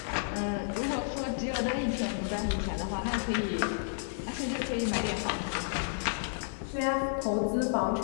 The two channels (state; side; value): silent; right; digital silence